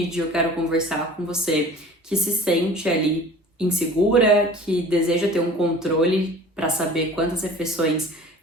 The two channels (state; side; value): normal; both; correlation 0.44